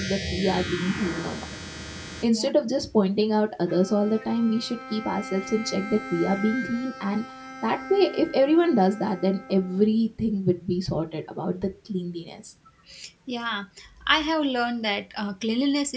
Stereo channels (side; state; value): both; identical; correlation 1.00